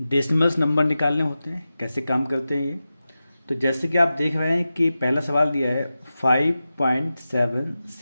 नंबर निकालने होते हैं, कैसे काम करते हैं ये। तो जैसे कि आप देख रहे हैं कि पहला सवाल दिया है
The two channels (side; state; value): both; inverted; correlation -0.93